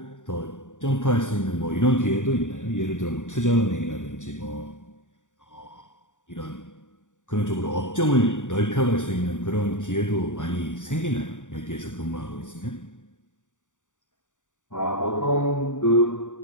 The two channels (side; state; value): right; late; 0.86 ms